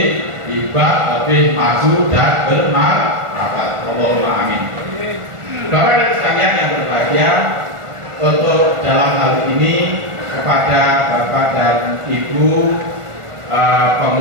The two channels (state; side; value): late; left; 1.4 ms